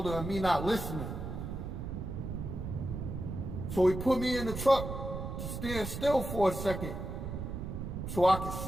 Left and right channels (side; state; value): right; noise; rumble, 6 dB below the sound